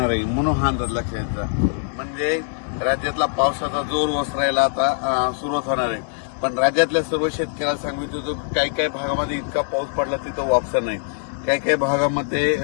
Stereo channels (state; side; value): silent; right; 64 dB below the other